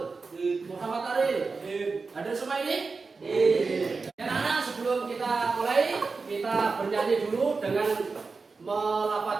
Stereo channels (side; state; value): left; quieter; 4.4 dB